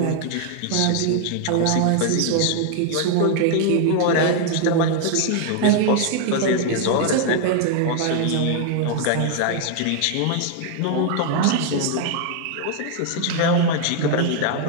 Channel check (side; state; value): both; different; correlation 0.00